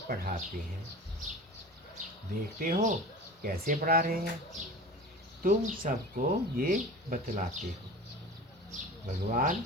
पढ़ाते हैं। देखते हो कैसे पढ़ा रहे हैं, तुम सबको ये बतलाते हो। भगवान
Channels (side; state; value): both; normal; correlation 0.36